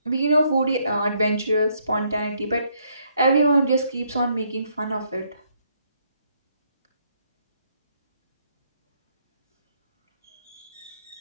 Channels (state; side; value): inverted; both; correlation -0.71